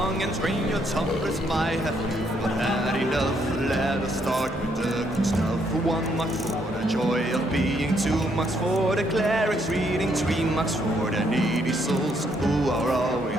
and drain your tumblers. Might have you but had enough. Let us start with the good stuff. 1 mark for the joy of being, 2 marks for the clerics reading, 3 marks for the needy souls who are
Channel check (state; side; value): normal; both; correlation 0.72